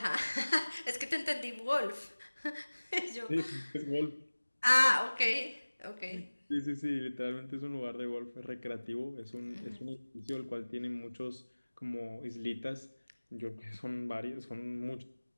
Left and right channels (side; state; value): both; inverted; correlation -1.00